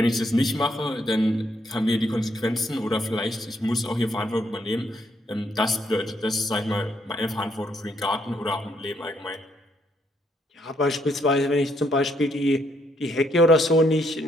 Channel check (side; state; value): both; normal; correlation 0.73